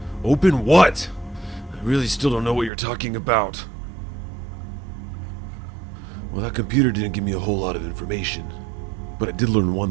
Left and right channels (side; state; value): left; drops out; at 2.7 s